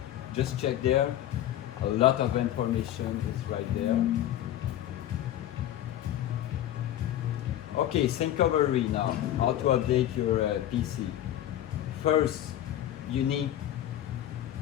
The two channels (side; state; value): right; quieter; 12.3 dB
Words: just check there. A lot of information is right there. Okay, syncovery now. How to update your PC. First, you need